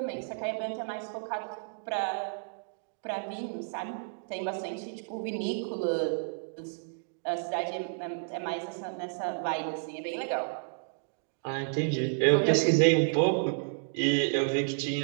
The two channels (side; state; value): left; silent; digital silence